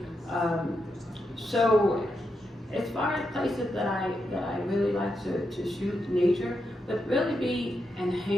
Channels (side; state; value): both; normal; correlation 0.84